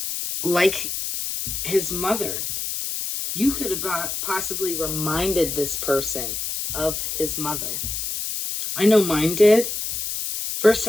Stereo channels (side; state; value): left; noise; hiss, 4 dB below the sound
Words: like his mother. You could have possibly reminded this person of his mother. I know mine did. First